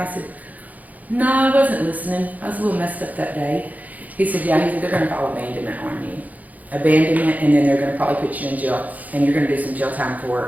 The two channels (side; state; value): left; late; 0.078 ms